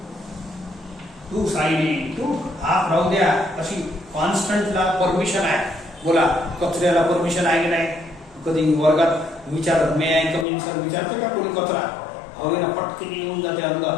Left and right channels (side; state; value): right; drops out; at 10.5 s